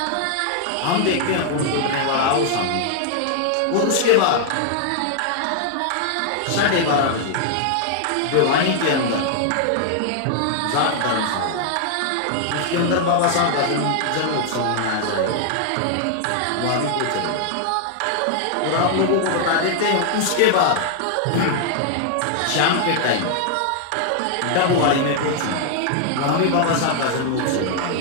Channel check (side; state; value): both; different; correlation 0.00